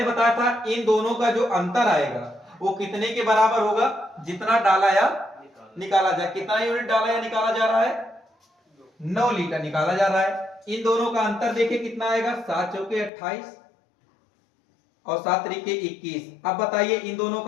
बताया था इन दोनों का जो अंतर आएगा वो कितने के बराबर होगा? जितना डाला या निकाला जाए। कितना यूनिट डाला या निकाला जा रहा है? 9 लीटर निकाला जा रहा है। इन दोनों का अंतर देखिए कितना आएगा? 7 चौके 28 और 7 त्रिके 21। अब बताइए इन दोनों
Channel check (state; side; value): drops out; right; at 13.1 s